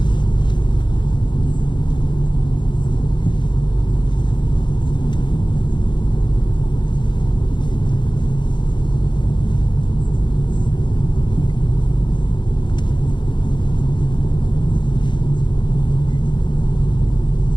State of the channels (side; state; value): right; late; 0.22 ms